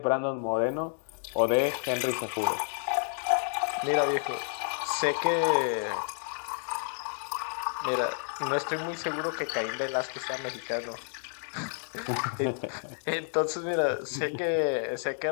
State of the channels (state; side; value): silent; right; digital silence